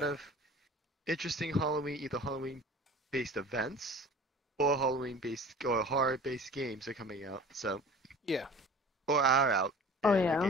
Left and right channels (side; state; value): both; normal; correlation 0.43